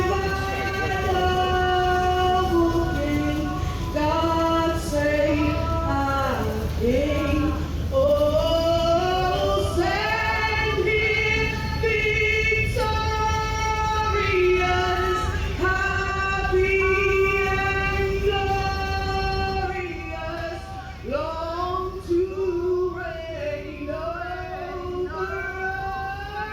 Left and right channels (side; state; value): both; identical; correlation 1.00